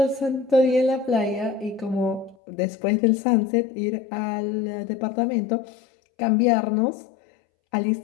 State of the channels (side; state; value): right; drops out; at 2.4 s